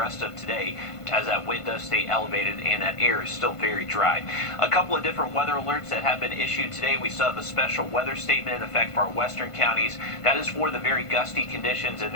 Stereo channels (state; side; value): late; right; 1.5 ms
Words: of today, as that wind does stay elevated and that air is still very dry. A couple of different weather alerts that have been issued today. We still have a special weather statement in effect for our western counties. That is for the very gusty conditions, and